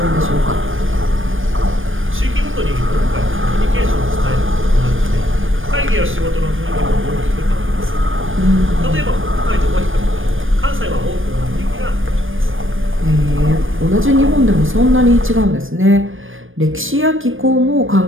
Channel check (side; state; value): left; late; 0.59 ms